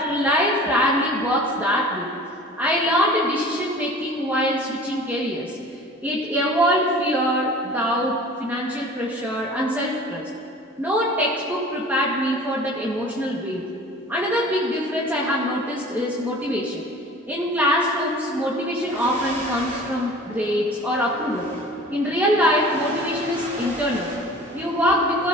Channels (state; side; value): normal; both; correlation 0.43